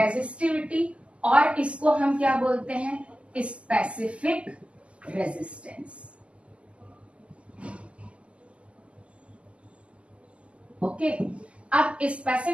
और इसको हम क्या बोलते हैं? Specific resistance. ओके, अब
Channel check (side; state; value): left; late; 0.058 ms